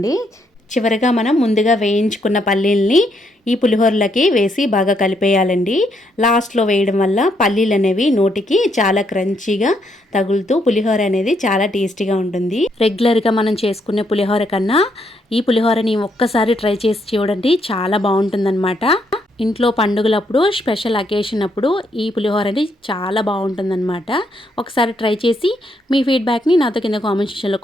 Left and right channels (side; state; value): both; normal; correlation 0.75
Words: చివరిగా మనం ముందుగా వేయించుకున్న పల్లీల్ని ఈ పులిహోరలకి వేసి బాగా కలిపేయాలండి. లాస్ట్లో వేయడం వల్ల పల్లీలు అనేవి నోటికి చాలా క్రంచీగా తగులుతూ పులిహోర అనేది చాలా టేస్టీగా ఉంటుంది. రెగ్యులర్గా మనం చేసుకునే పులిహోర కన్నా ఈ పులిహోరని ఒక్కసారి ట్రై చేసి చూడండి, చాలా బాగుంటుందన్నమాట. ఇంట్లో పండుగలప్పుడు, స్పెషల్ అకేషన్ అప్పుడు ఈ పులిహోరని చాలా బాగుంటుందన్నమాట. ఒకసారి ట్రై చేసి మీ ఫీడ్బ్యాక్ని నాతో కింద కామెంట్ సెక్షన్లో